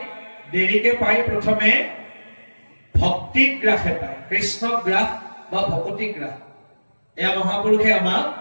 দেৰিকে পায়। প্ৰথমে ভক্তি গ্ৰাসে পায়, কৃষ্ণ গ্ৰাস বা ভকতি গ্ৰাস। এয়া মহাপুৰুষে আমাক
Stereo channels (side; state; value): both; inverted; correlation -1.00